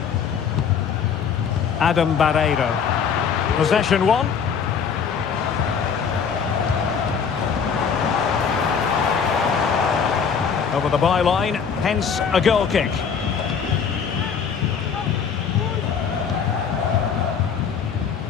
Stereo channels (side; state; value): right; quieter; 6.7 dB